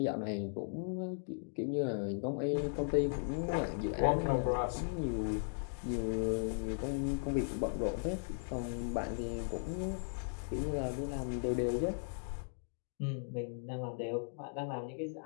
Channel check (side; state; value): right; silent; digital silence